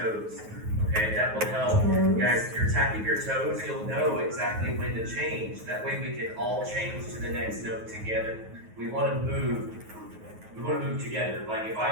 Okay, that will help. Guys, if you're tapping your toes, you'll know exactly when to change. That way we can all change to the next note together. We want to move together. Like if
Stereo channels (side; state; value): left; late; 9.4 ms